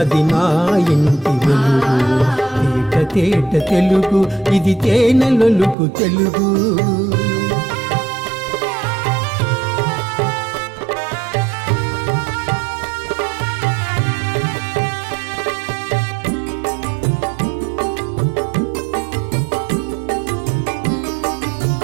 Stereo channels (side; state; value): left; drops out; at 5.8 s